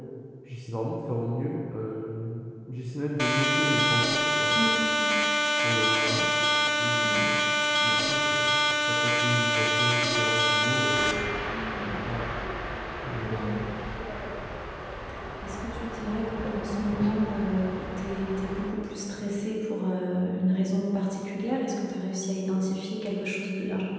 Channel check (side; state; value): both; identical; correlation 1.00